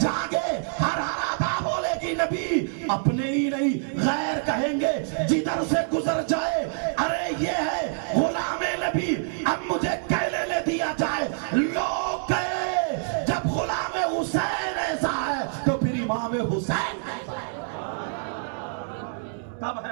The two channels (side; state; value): left; silent; digital silence